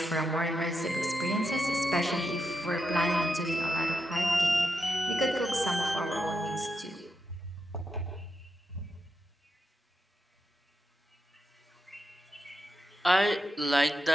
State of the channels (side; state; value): both; normal; correlation 0.85